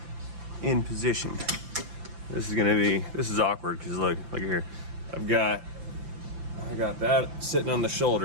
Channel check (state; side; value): late; left; 5.8 ms